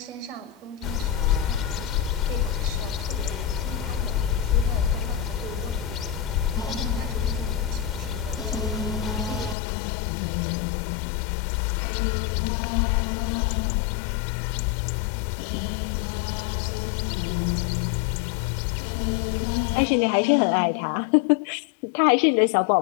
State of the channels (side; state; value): right; drops out; at 9.6 s